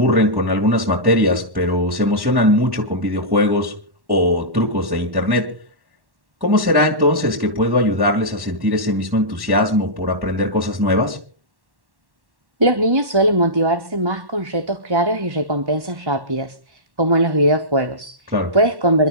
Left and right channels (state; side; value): late; left; 1.1 ms